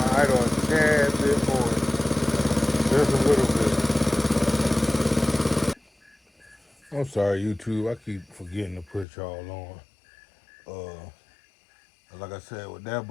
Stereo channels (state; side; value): drops out; right; at 9.1 s